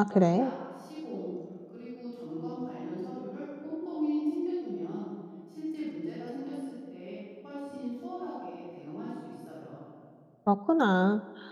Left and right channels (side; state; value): both; identical; correlation 1.00